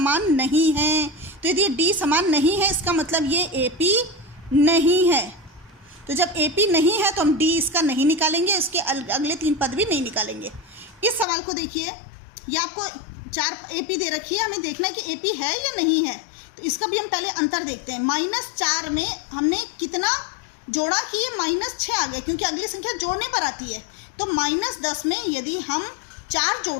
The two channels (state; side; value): drops out; right; at 11.2 s